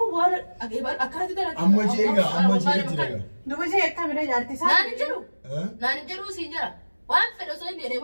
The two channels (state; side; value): inverted; both; correlation -1.00